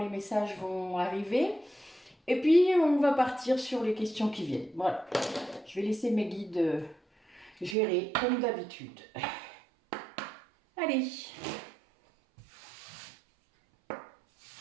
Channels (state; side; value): drops out; left; at 7.8 s